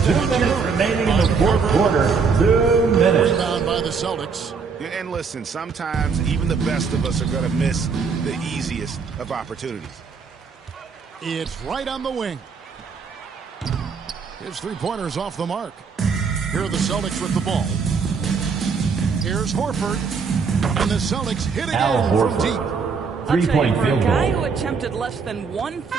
2 minutes remaining in the fourth quarter. 2 minutes. Rebound by the Celtics. And listen, sometimes even the best of us are going to miss the easiest of opportunities. It's right on the wing. His three-pointers off the mark. Here are the Celtics with the ball. Here's Horford. And the Celtics hit again from deep. Three-point field goal. For a guy goal. who attempted less than one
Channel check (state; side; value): quieter; left; 5.4 dB